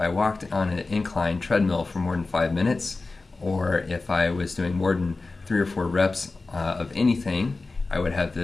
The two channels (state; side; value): quieter; right; 3.6 dB